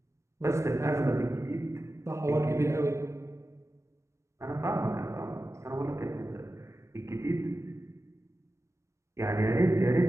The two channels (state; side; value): late; left; 0.14 ms